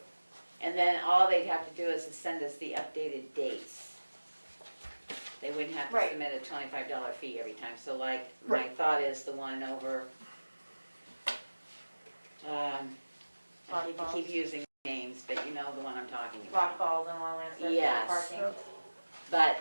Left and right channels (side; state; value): both; inverted; correlation -1.00